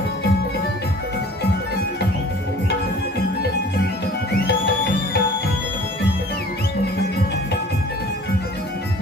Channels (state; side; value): normal; both; correlation 0.47